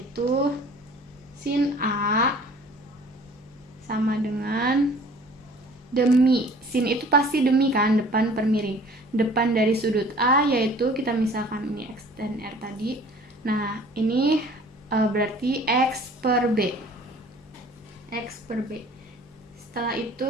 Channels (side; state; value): both; normal; correlation 0.50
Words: sin A sama dengan demi. Sin itu pasti demi kan, depan per miring. Depan dari sudut A, yaitu kita misalkan ini X dan R tadi. Nah, ini berarti X per B. X per B. Setelah